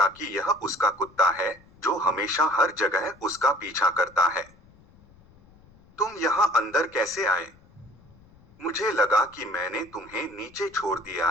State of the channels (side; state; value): left; noise; rumble, 27 dB below the sound